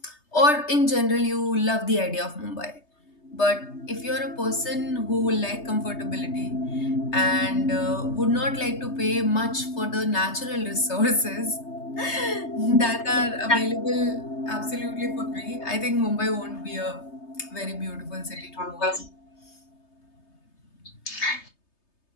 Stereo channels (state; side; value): late; right; 3.3 ms